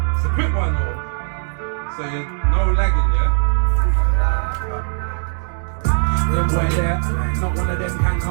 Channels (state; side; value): silent; left; digital silence